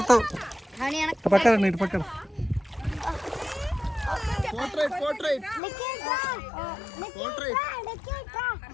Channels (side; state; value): right; drops out; at 5.6 s